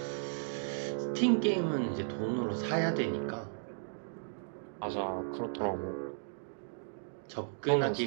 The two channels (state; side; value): silent; left; digital silence